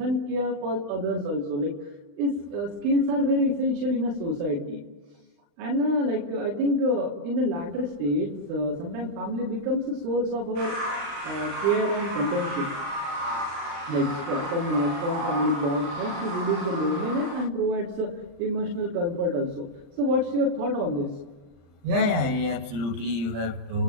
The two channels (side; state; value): left; late; 35 ms